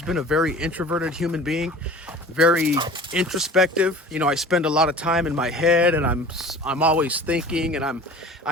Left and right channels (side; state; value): both; normal; correlation 0.41